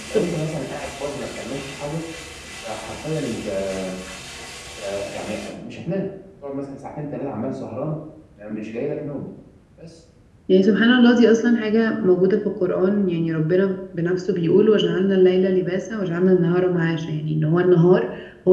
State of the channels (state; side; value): identical; both; correlation 1.00